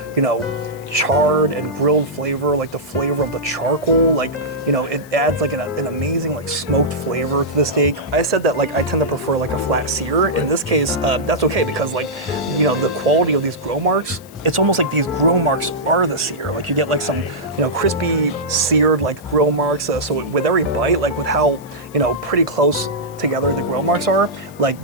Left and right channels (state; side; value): noise; left; hiss, 24 dB below the sound